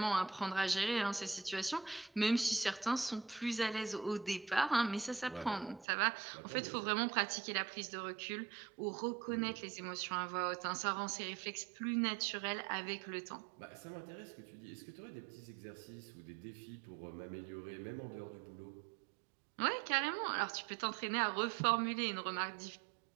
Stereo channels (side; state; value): left; drops out; at 5.9 s